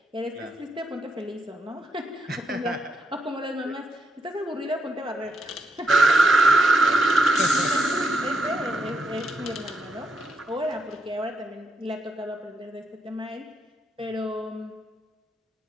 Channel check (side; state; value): both; normal; correlation 0.80